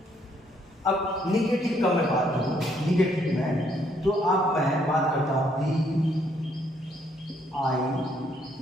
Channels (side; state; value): both; normal; correlation 0.69